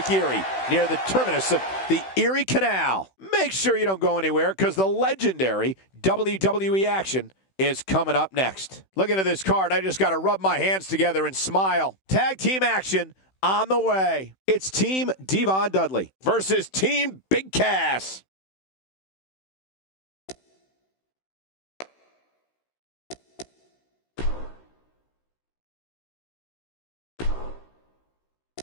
Erie, near the terminus of the Erie Canal. Make sure you don't go anywhere, because the legendary WWE action is coming up next. Looking at this card, I just got to rub my hands together and smile. Tag team action on the way. It's Team Devon Dudley versus Team Big Cass.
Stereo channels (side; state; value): right; late; 16 ms